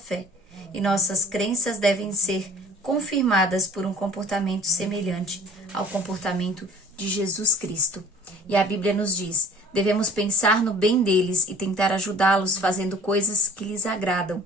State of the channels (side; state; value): both; normal; correlation 0.49